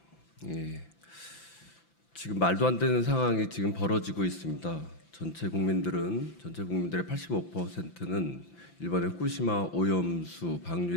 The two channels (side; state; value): right; late; 5.9 ms